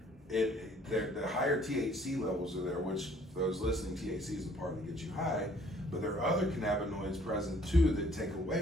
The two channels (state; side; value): normal; both; correlation 0.59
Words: the higher THC levels are there, which for those listening, THC is the part that gets you high, but there are other cannabinoids present too that take